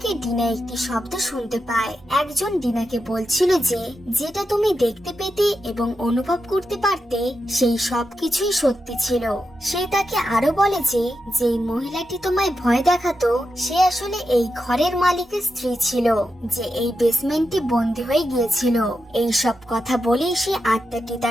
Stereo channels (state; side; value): normal; both; correlation 0.88